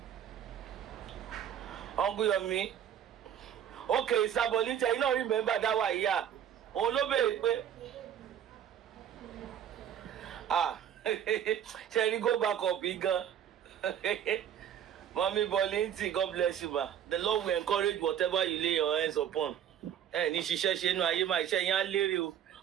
Uncle Yomi. Okay, Sabolita, you don't remember that one, yeah. Olobe, shall you go back up, bigger? Mommy Bolinti, God bless you, ma. The Lord will encourage whatever you lay your hands upon. Ni ṣiṣẹ́ nu ayé máa iṣẹ́ yẹn á lérè o.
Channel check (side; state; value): left; quieter; 9.6 dB